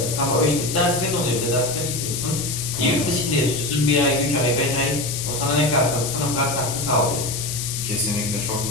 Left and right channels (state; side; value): noise; left; hiss, 4 dB below the sound